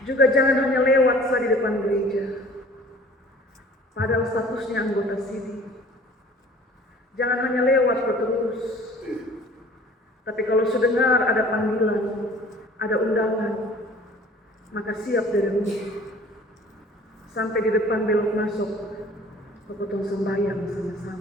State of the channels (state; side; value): normal; both; correlation 0.49